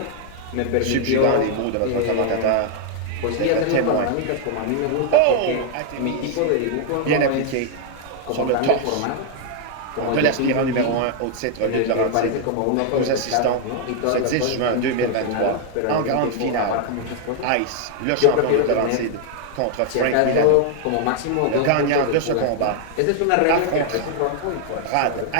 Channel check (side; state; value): both; different; correlation 0.00